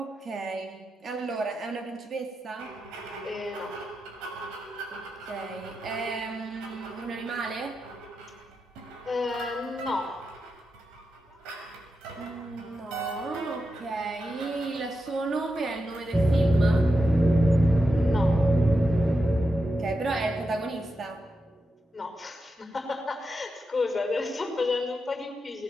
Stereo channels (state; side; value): normal; both; correlation 0.88